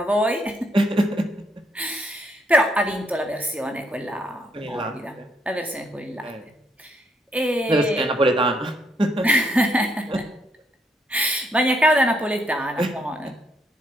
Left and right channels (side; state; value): both; normal; correlation 0.73